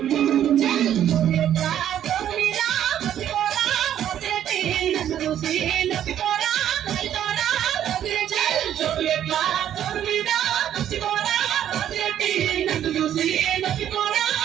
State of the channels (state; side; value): quieter; left; 10.7 dB